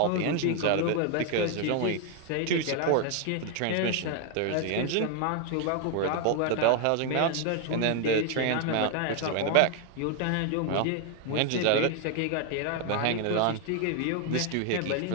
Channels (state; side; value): different; both; correlation 0.01